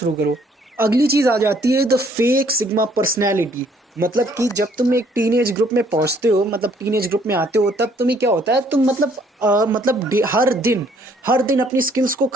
करो। अगली चीज़ आ जाती है द फेक सिग्मा पर्सनैलिटी। मतलब कि जब तुम एक टीनेज ग्रुप में पहुंचते हो, मतलब टीनेज ग्रुप में आते हो, तब तुम्हें क्या होता है, तुम मतलब हर दिन अपनी स्किल्स को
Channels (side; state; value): both; normal; correlation 0.63